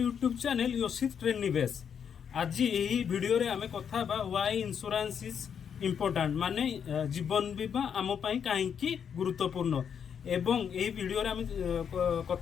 channel योशित ट्रेन निवेश। आज यही वीडियो रे आमे कथा बा व्हाई इंश्योरेंस इज इम्पोर्टेंट माने जीवन बीमा आम पाई कहीं गुरुत्वपूर्ण एवं यही वीडियो रे आमे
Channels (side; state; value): right; quieter; 7.6 dB